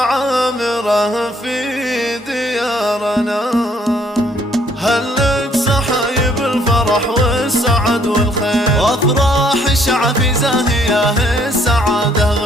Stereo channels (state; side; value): normal; both; correlation 0.64